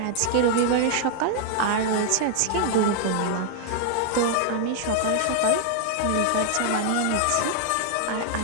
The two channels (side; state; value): both; different; correlation 0.00